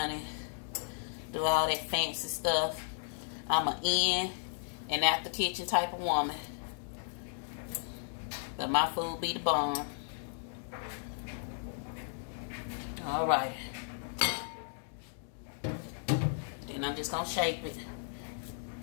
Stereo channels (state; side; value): silent; right; digital silence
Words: do all that fancy stuff. I'm an in and out the kitchen type of woman. But my food be the bomb. Alright. Then I'm just going to shape it.